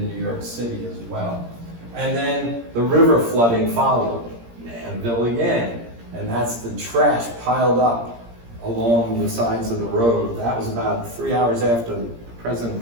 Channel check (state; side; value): late; left; 17 ms